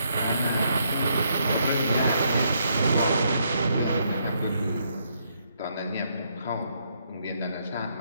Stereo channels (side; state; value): both; inverted; correlation -0.74